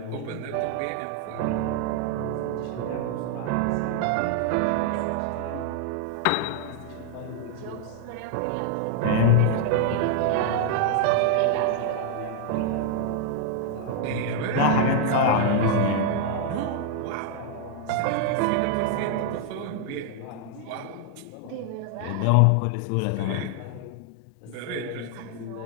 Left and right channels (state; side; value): different; both; correlation 0.00